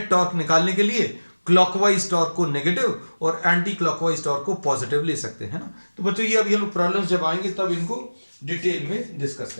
टॉर्क निकालने के लिए क्लॉकवाइज टॉर्क को नेगेटिव और एंटी क्लॉकवाइज टॉर्क को पॉजिटिव ले सकते हैं ना। तो बच्चों ये अभी हम लोग प्रॉब्लम्स जब आएंगे तब इनको डिटेल में डिस्कस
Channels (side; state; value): both; inverted; correlation -1.00